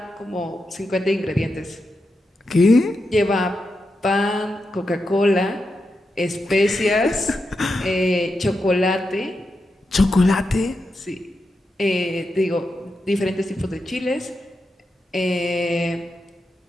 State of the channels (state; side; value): normal; both; correlation 0.87